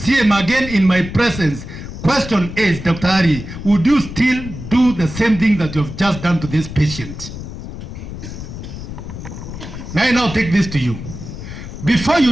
him again in my presence. Question is, Dr. Ari, would you still do the same thing that you have just done to this patient? May I now take this to you. Before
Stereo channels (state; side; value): noise; left; rumble, 10 dB below the sound